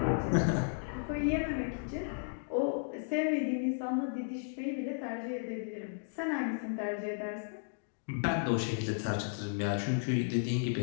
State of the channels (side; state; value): right; silent; digital silence